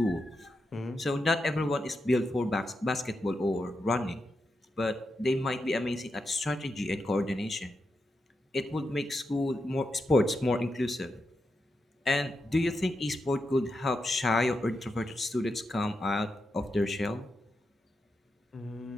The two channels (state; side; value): normal; both; correlation 0.86